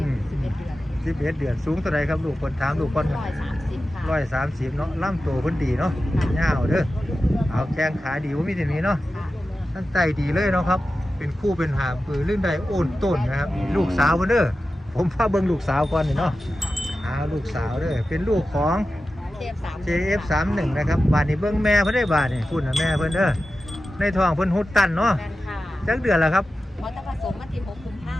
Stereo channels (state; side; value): normal; both; correlation 0.93